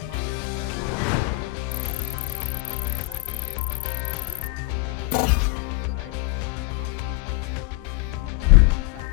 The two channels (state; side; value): quieter; right; 24.5 dB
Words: market. Firstly, BYD's early investments in battery technology gave it competitive edge over rivals. The company's expertise in lithium-ion